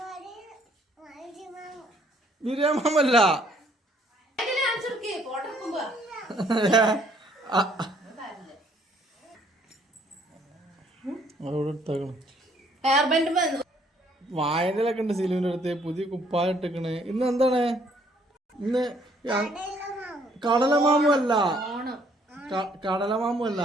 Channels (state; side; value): normal; both; correlation 0.64